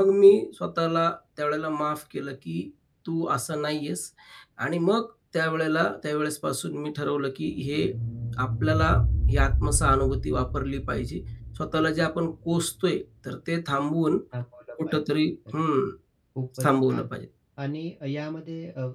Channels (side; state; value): both; identical; correlation 1.00